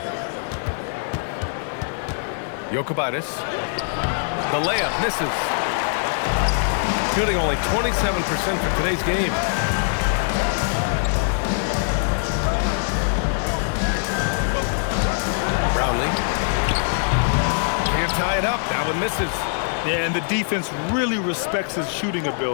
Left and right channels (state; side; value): silent; right; digital silence